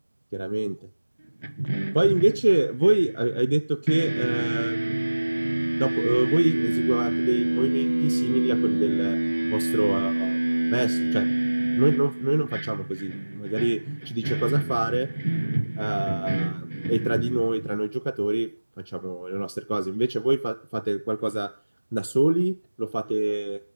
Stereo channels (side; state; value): both; inverted; correlation -1.00